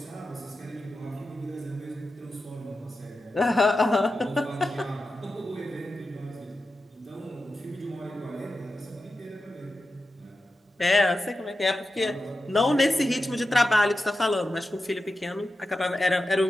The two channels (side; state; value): both; normal; correlation 0.91